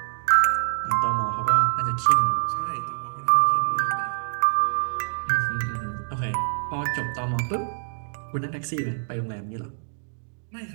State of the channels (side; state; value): left; silent; digital silence